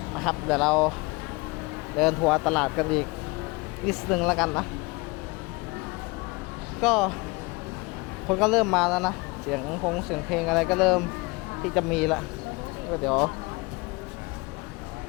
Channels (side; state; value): right; quieter; 25.5 dB